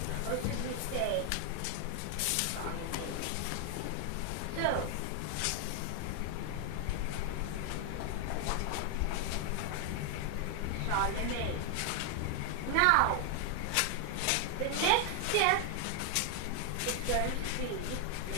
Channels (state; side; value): different; both; correlation 0.00